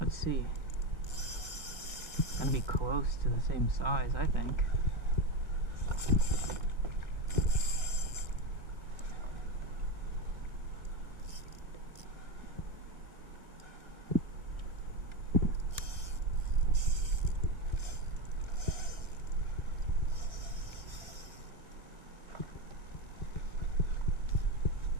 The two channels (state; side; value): late; left; 1.8 ms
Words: Let's see. Gotta be close to the same size, I think.